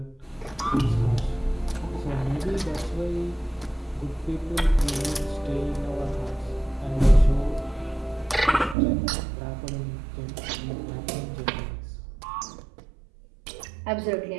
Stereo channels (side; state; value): left; drops out; at 8.8 s